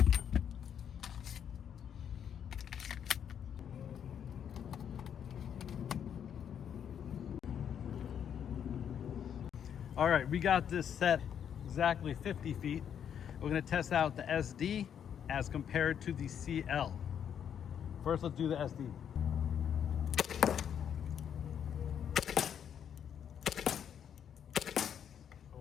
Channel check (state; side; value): quieter; right; 8.6 dB